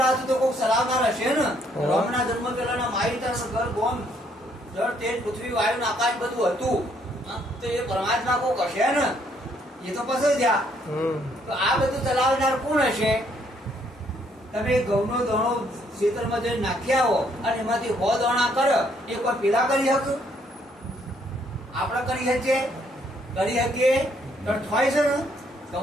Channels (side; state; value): both; normal; correlation 0.69